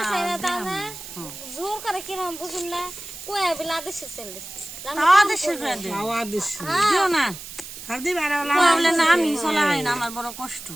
সাইরা দাও না জোর করে কিরম বুঝুন না কয়া বিলা দেশে সেল দিস তাও দেশের করে দে, খাওয়া দিস দিও না। আর দিবা আর বললে না আমি চলা হয় না, আমার বড় কষ্ট।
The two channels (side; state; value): right; noise; hiss, 12 dB below the sound